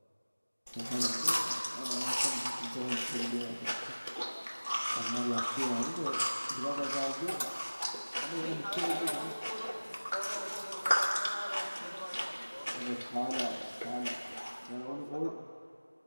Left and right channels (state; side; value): inverted; both; correlation -1.00